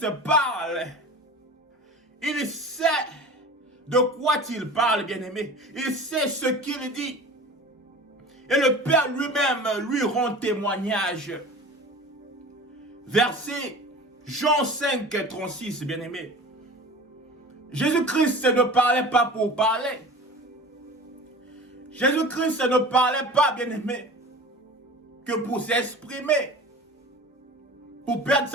parle, il sait de quoi il parle, bien-aimé. Il sait ce qu'il dit. Et le Père lui-même lui rend témoignage. Verset Jean 5, 36, bien-aimé. Jésus-Christ ne parlait pas pour parler. Jésus-Christ ne parlait pas, bien-aimé, que pour s'exprimer, pour perdre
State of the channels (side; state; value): both; normal; correlation 0.38